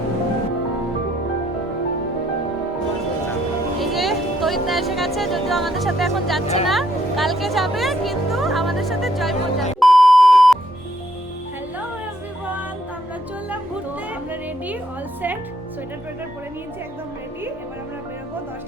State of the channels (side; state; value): both; normal; correlation 0.70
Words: এসে গেছে, যদিও আমাদের সাথে এখন যাচ্ছে না, কালকে যাবে, কিন্তু আমাদের সাথে জয়পুর যাবে। হ্যালো এভরিওয়ান, আমরা চললাম ঘুরতে, আমরা রেডি, অল সেট, সোয়েটার টোয়েটার পরে নিয়েছি, একদম রেডি। এবার আমরা বেরোবো